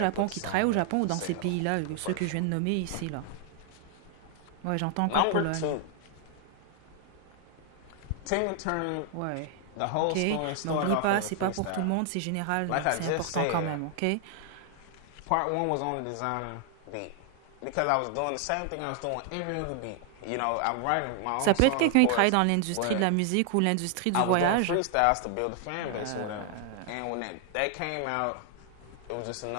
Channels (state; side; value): different; both; correlation 0.00